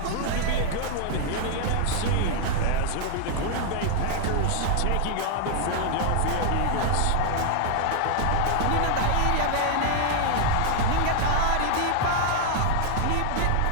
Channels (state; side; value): different; both; correlation 0.00